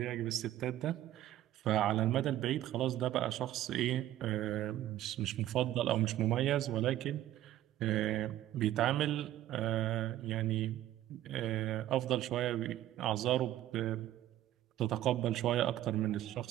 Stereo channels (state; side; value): quieter; left; 13.4 dB